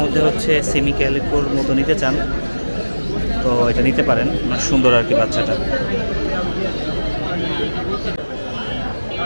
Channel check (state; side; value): inverted; both; correlation -1.00